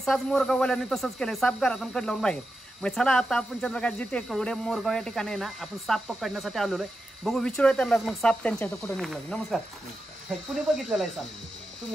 मोरगाववाल्यांनी तसंच केलं, साप घरातून कड लावून बाहेर. मग चला आता आपण चंद्रकांतजी टेकवडे मोरगाव या ठिकाणी आहे ना, आपण साप पकडण्यासाठी आलेलो आहे. बघू विचारूया त्यांना मग साप त्यांच्या इथं कुठं निघाला. नमस्कार. कुणी बघितलेला आहे साप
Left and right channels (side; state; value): both; normal; correlation 0.89